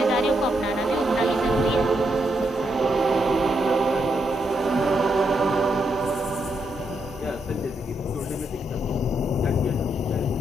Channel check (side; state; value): both; normal; correlation 0.80